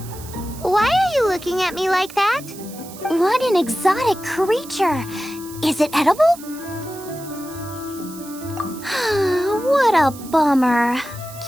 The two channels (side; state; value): right; noise; hiss, 17 dB below the sound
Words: Why are you looking at me like that? What an exotic creature! Is it edible? What a bummer.